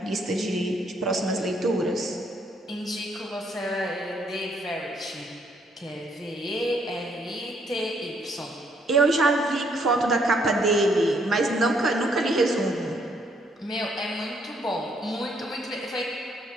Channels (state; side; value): normal; both; correlation 0.69